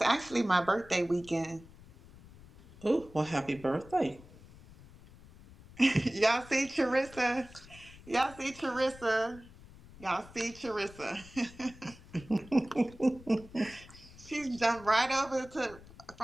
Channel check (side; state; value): left; noise; rumble, 20 dB below the sound